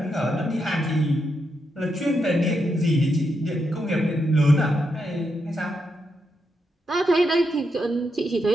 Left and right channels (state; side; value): normal; both; correlation 0.83